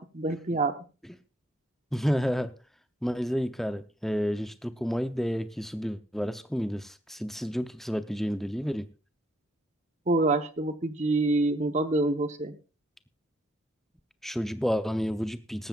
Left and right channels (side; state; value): both; normal; correlation 0.70